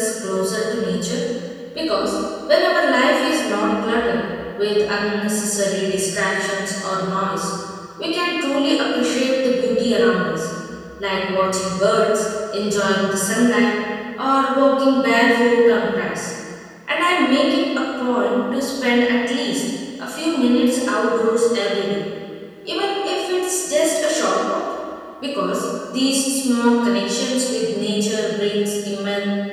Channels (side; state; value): both; identical; correlation 1.00